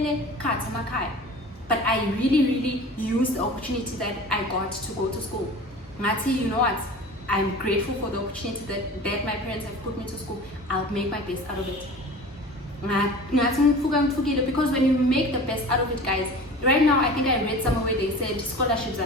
But I really used the opportunity that I got to go to school. Ngati, you know what? I'm grateful for the opportunity that my parents have put me to school. I'll make my best out of it. Because when you make the best out of it, guys, right now I think I read somewhere where they said scholarships are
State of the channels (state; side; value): normal; both; correlation 0.39